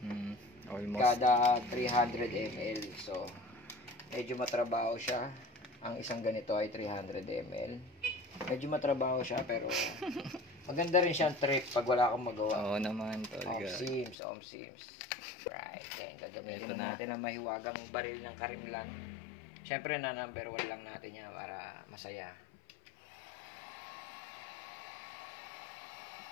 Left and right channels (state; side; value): drops out; right; at 14.2 s